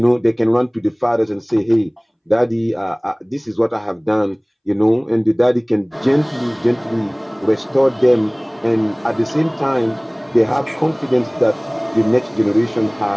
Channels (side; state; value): both; identical; correlation 1.00